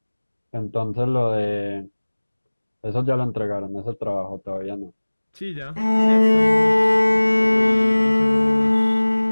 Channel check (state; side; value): inverted; both; correlation -1.00